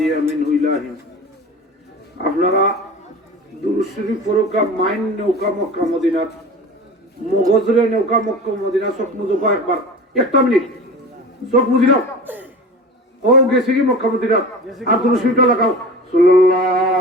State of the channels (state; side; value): normal; both; correlation 0.35